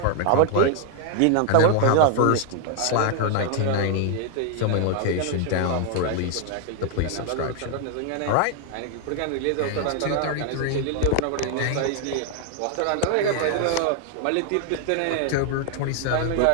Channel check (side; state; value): both; different; correlation 0.00